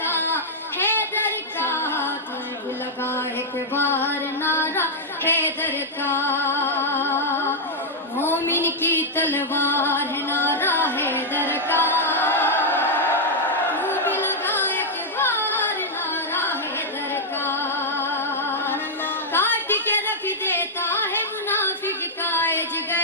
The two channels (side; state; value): both; normal; correlation -0.04